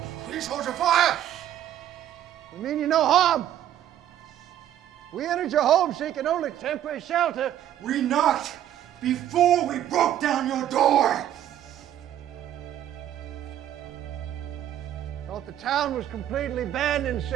Please hold your fire! We mean you no harm. We entered your home seeking only temporary shelter. We knocked before we broke down your door! Thought the town was completely abandoned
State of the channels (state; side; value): quieter; left; 11.5 dB